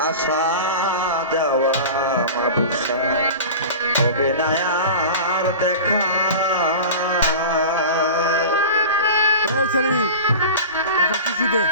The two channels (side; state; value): both; inverted; correlation -0.32